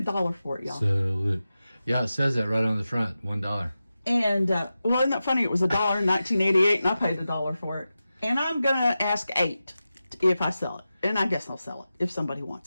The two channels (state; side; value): inverted; both; correlation -0.93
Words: for it, y'all. Sell it. Yeah, it says that right on the front. $1. And, well, isn't that funny? It was $1 in 1988, and I paid $1 for it. And I'm going to ask $8 if I sell it. And I guess I'll sell it if somebody